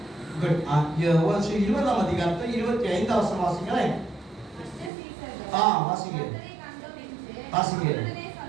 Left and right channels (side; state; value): left; drops out; at 4.9 s